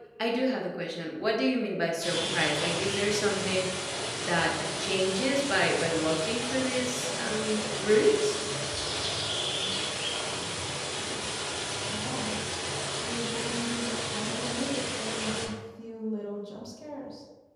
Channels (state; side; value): identical; both; correlation 1.00